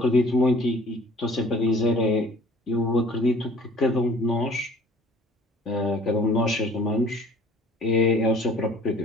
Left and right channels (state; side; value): normal; both; correlation 0.51